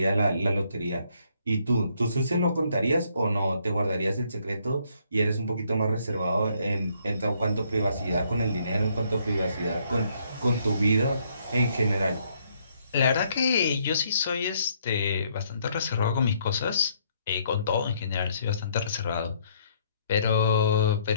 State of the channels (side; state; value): both; inverted; correlation -0.69